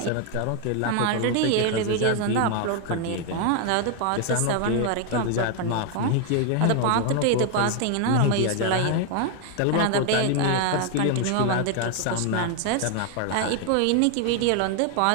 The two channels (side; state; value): both; different; correlation 0.00